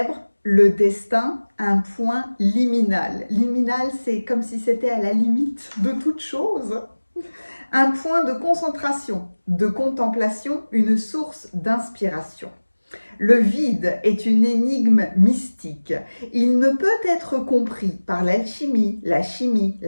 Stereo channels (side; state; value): both; inverted; correlation -1.00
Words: le destin, un point liminal. Liminal, c'est comme si c'était à la limite de toute chose. Un point de concentration, de contemplation, une source d'inspiration. Le vide est une énigme mystique. Il ne peut être compris par l'alchimie, la chimie,